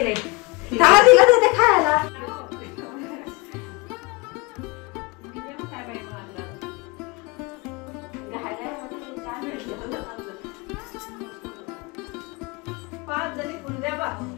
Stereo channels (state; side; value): quieter; right; 26.0 dB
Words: तिला देते खायला. पाच जणी पुंद्या बा